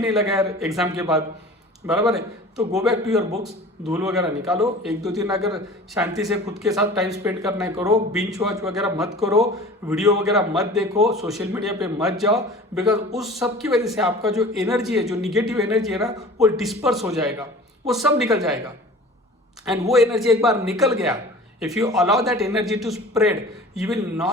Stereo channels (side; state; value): both; normal; correlation 0.42